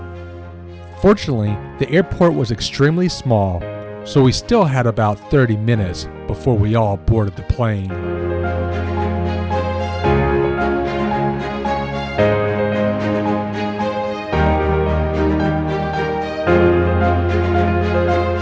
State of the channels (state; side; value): identical; both; correlation 1.00